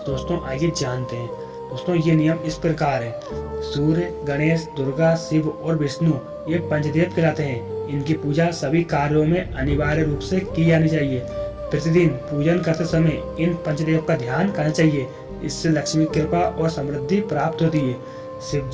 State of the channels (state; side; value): identical; both; correlation 1.00